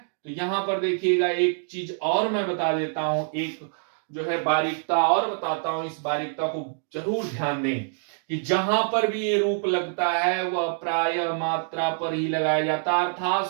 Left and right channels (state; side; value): silent; left; digital silence